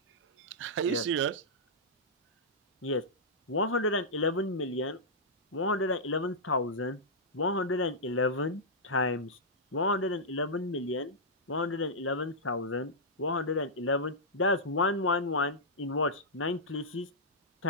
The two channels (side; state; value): both; normal; correlation -0.12